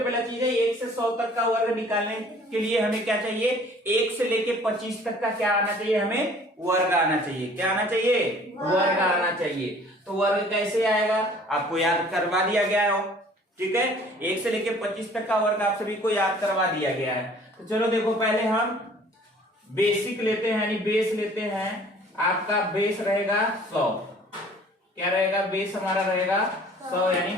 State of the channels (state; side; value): normal; both; correlation 0.52